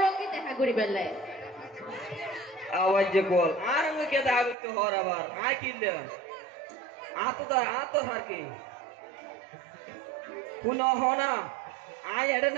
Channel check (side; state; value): left; drops out; at 4.5 s